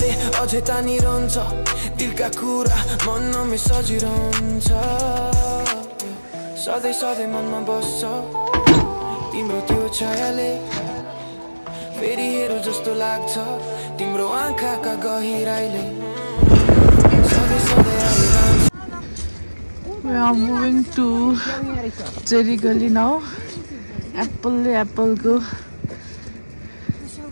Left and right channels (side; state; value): both; inverted; correlation -1.00